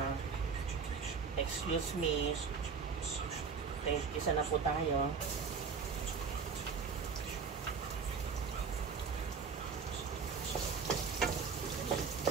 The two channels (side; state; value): left; quieter; 5.6 dB